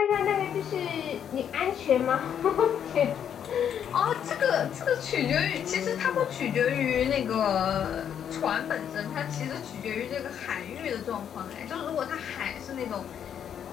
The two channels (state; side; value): quieter; right; 8.8 dB